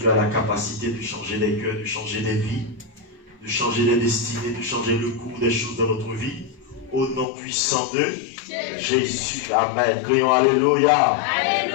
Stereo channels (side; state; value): right; drops out; at 7.2 s